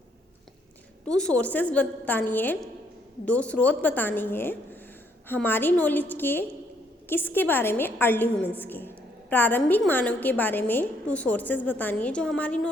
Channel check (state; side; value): normal; both; correlation 0.70